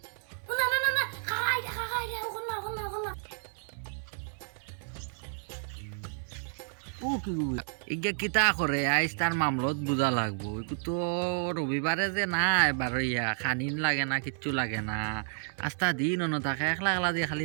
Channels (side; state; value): left; silent; 57 dB below the other